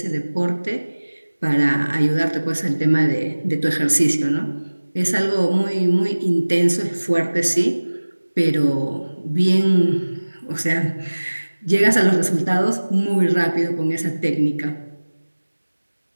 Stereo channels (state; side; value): inverted; both; correlation -1.00